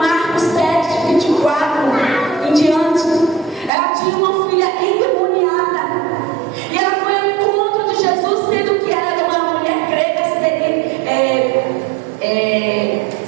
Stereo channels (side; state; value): left; drops out; at 3.7 s